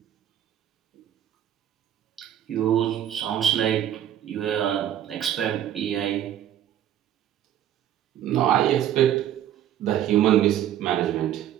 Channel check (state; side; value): quieter; left; 11.1 dB